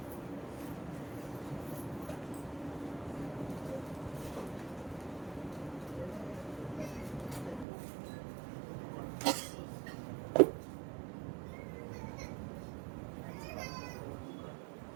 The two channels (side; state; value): left; drops out; at 7.7 s